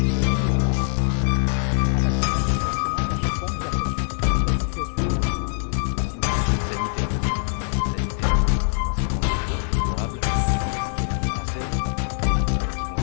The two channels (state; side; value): silent; right; digital silence